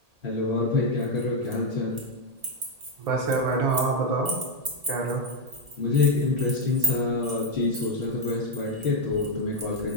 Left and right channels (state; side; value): late; left; 1.8 ms